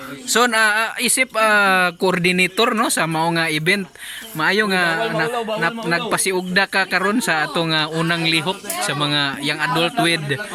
So isip coordinator no sa mao nga event. Maayo nga nagpasiugda ka karon sa atong unang lihok sa mga young adult with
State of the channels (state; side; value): identical; both; correlation 1.00